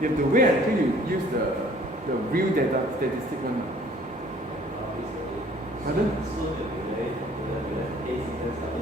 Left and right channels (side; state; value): both; normal; correlation 0.55